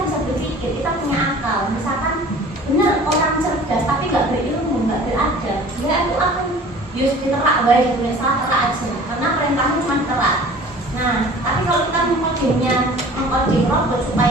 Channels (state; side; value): normal; both; correlation 0.46